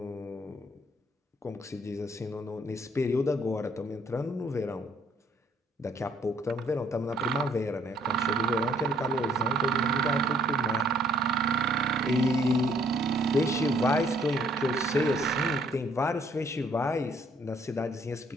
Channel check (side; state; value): both; normal; correlation 0.64